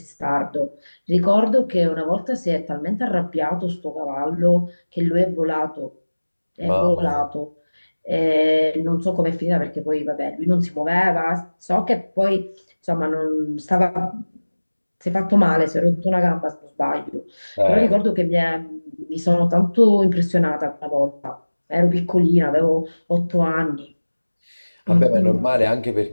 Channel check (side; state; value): both; inverted; correlation -1.00